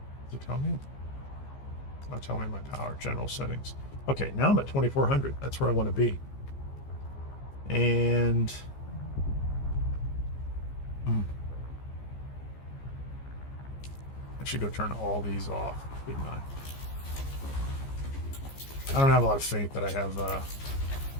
it tell me? It's not telling me my power. General settings. Okay, now I'm at 2400. That's where I want to be. And... I should go turn all these off, shouldn't I? I don't have a lot of faith that I have...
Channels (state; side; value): late; right; 15 ms